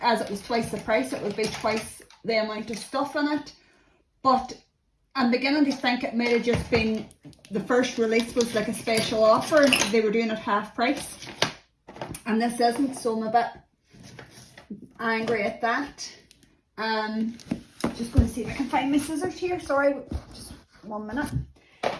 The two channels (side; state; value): both; identical; correlation 1.00